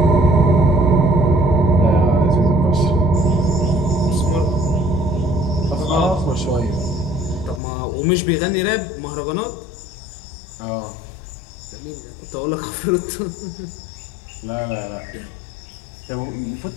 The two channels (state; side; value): drops out; right; at 7.6 s